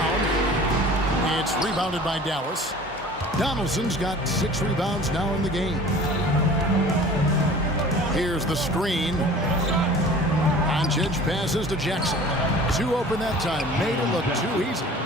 It's rebounded by Dallas. Donaldson's got 6 rebounds now in the game. Here's the screen. Doncic passes to Jackson. 2 open that time. Made it look too easy.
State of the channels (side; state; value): both; normal; correlation 0.44